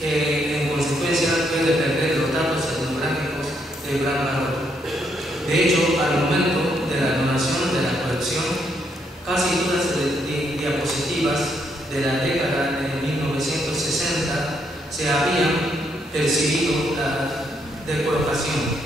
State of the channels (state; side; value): normal; both; correlation 0.75